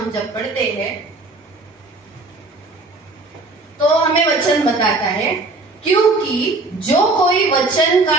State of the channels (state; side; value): quieter; left; 3.2 dB